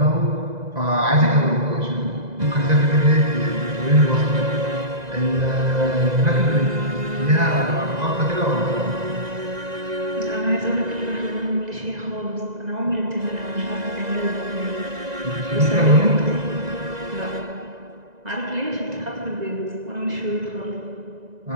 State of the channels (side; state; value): left; late; 2.0 ms